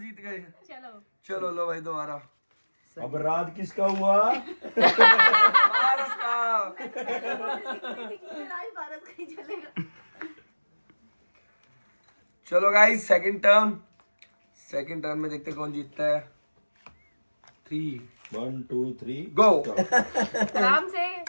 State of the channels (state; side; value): inverted; both; correlation -1.00